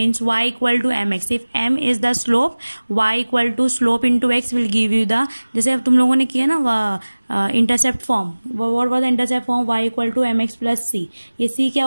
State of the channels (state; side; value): inverted; both; correlation -1.00